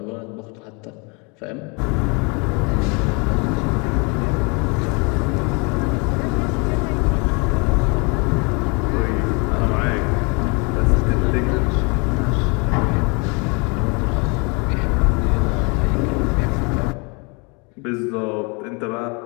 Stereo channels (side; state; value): right; quieter; 31.4 dB